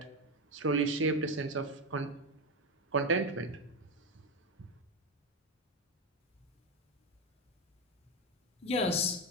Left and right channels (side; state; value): both; normal; correlation 0.12